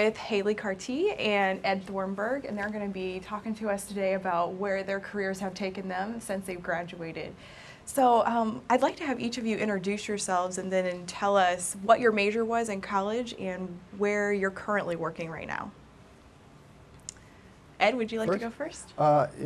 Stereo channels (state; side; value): identical; both; correlation 1.00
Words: Hali Cartee and Ed Thornburg, and they're going to be talking to us today about where their careers have taken them since they've graduated. So I'd like to have each of you introduce yourselves and then tell us what your major was in college and where you're currently working right now. Ed, would you like to go first?